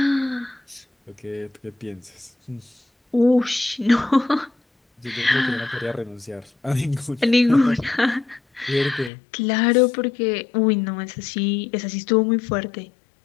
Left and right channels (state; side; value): drops out; right; at 9.1 s